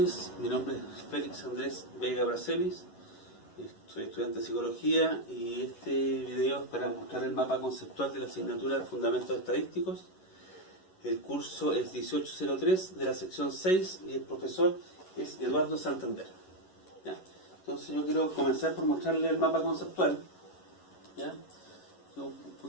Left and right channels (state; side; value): late; right; 11 ms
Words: mi nombre es Félix Andrés Vega Bracelis, soy estudiante de Psicología y este video es para mostrar el mapa conceptual de la asignatura de Fundamentos Estadísticos. El curso es 1803 de la sección 6 y el profesor es Eduardo Santander. ¿Ya? Entonces yo quiero comenzar por mostrarle el mapa conceptual. ¿Ya? Es un